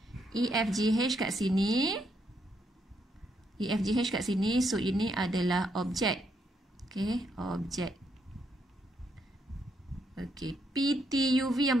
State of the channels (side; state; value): both; normal; correlation 0.76